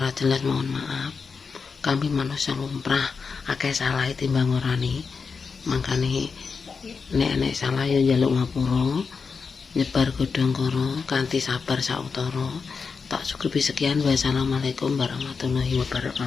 jelas mohon maaf. Kami manusia lumrah, akeh salah timbang ngorani. Mangkane nek salah ya njaluk ngapura. Nyebar godhong karo kanthi sabar sautara. Tak cukupi sekian. Wassalamualaikum warahmatullahi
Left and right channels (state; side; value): quieter; right; 5.2 dB